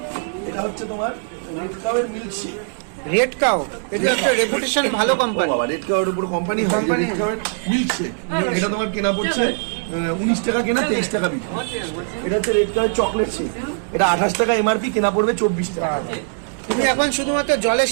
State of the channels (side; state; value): left; silent; digital silence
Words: এটা হচ্ছে তোমার রেড কাউয়ের মিল্কশেক। রেড কাউ, এটা একটা রেপুটেশন ভালো কোম্পানি। রেড কাউয়ের উপর কোম্পানি রেড কাউয়ের মিল্কশেক। এটা তোমার কেনা পড়ছে 19 টাকা কেনা, 23 টাকা বিক্রি। এটা হচ্ছে রেড কাউয়ের চকলেট শেক। এটা 28 টাকা এমআরপি, কেনা পড়বে 24 টাকা। তুমি এখন শুধুমাত্র জলে